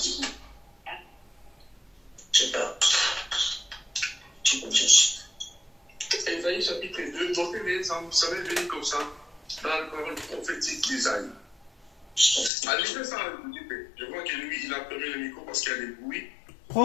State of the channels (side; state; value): right; drops out; at 12.5 s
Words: Je sais pas. Ésaïe chapitre 2, notez-les, ça va venir comme ça dans la parole prophétique d'Ésaïe. Allez, fais ça, je vois que lui, il a fermé le micro parce qu'il y a des bruits.